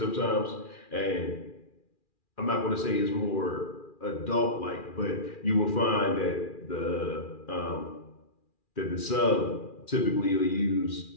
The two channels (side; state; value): right; late; 2.4 ms